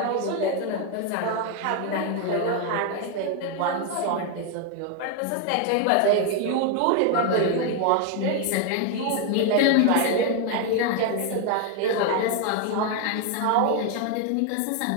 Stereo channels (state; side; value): different; both; correlation 0.01